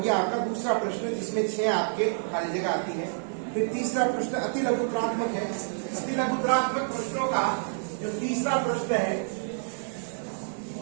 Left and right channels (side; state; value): left; silent; 59 dB below the other